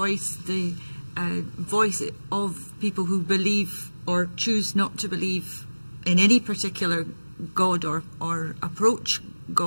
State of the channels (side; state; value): both; inverted; correlation -1.00